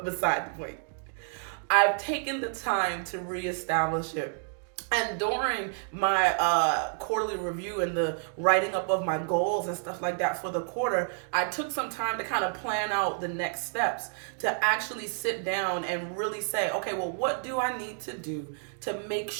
beside the point, I've taken the time to reestablish it. And during my quarterly review and the writing up of my goals and stuff like that for the quarter, I took some time to kind of plan out the next steps, to actually sit down and really say, okay, well, what do I need to do to make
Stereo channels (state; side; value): silent; left; 58 dB below the other